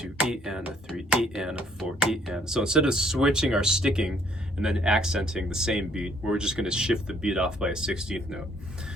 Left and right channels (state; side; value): normal; both; correlation 0.65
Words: E and a 3 E and a 4 E and. So instead of switching our sticking and then accenting the same beat, we're just going to shift the beat off by a 16th note.